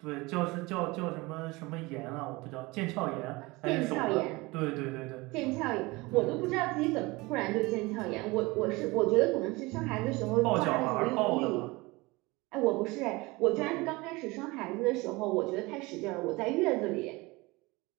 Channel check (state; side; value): quieter; left; 23.2 dB